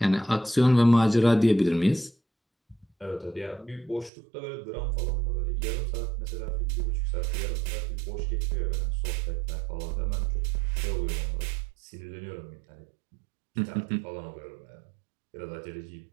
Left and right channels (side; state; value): left; drops out; at 4.1 s